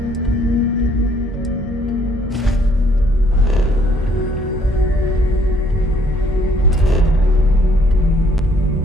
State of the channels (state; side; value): normal; both; correlation 0.65